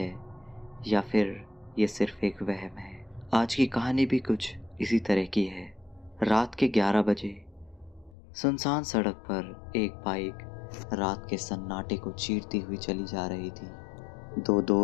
या फिर ये सिर्फ एक वहम है। आज की कहानी भी कुछ इसी तरह की है। रात के 11 बजे सुनसान सड़क पर एक बाइक रात के सन्नाटे को चीरती हुई चली जा रही थी। दो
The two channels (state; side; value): drops out; right; at 8.2 s